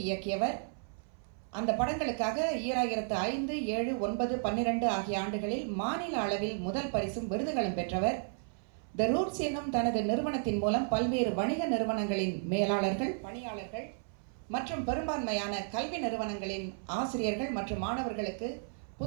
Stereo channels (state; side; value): silent; left; 56 dB below the other